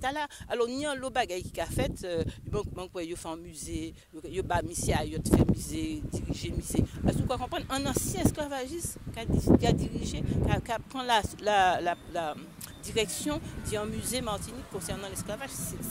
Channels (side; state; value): both; identical; correlation 1.00